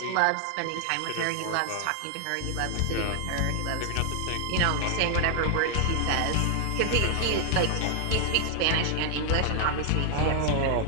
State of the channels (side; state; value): both; different; correlation 0.00